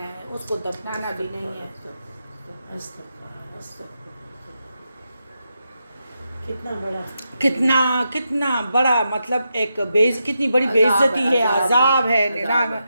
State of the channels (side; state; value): both; inverted; correlation -0.85